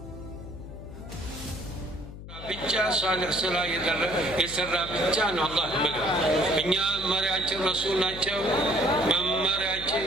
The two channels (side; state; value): left; noise; hum, 13 dB below the sound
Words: ብቻ ሷሊህ ስራ የሰራ ብቻ ነው አላህ ይመገብ። እኛ መሪያችን ረሱል ናቸው። መመሪያችን